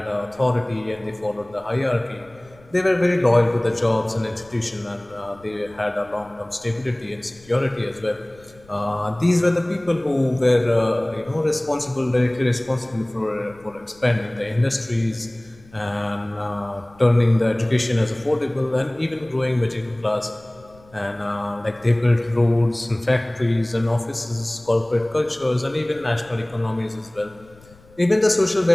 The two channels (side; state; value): left; noise; rumble, 26 dB below the sound